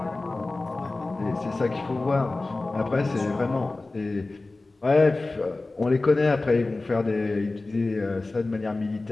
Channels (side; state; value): right; quieter; 3.2 dB